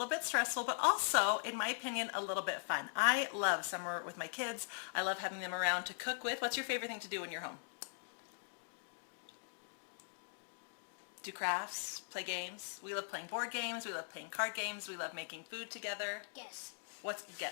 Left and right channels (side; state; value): right; silent; digital silence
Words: bit stressful, but also, in my opinion, a little bit fun. I love summer with my kids. I love having them around to cook with. What's your favorite thing to do when you're home? Do crafts, play games. We love playing board games. We love playing card games. We love making food together. Guess.